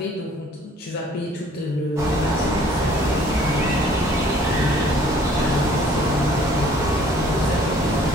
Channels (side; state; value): both; normal; correlation 0.56